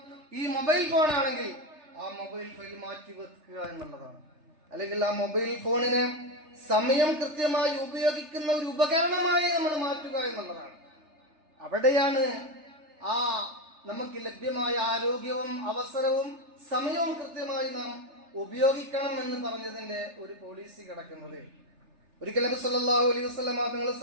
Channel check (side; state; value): left; late; 3.3 ms